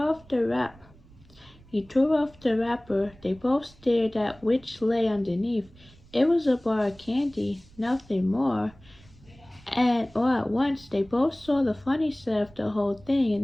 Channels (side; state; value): right; noise; rumble, 25 dB below the sound